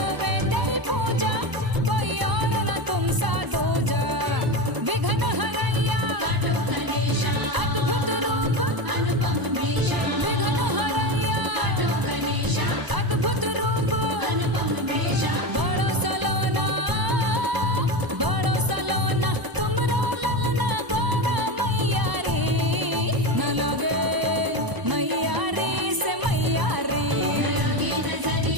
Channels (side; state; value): left; late; 1.0 ms